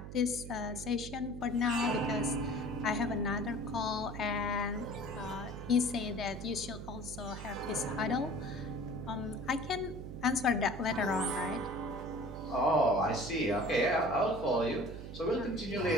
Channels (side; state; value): right; noise; hum, 10 dB below the sound